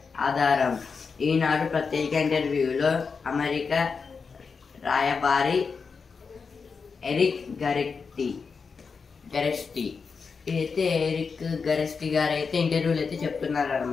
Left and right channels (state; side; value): quieter; right; 5.2 dB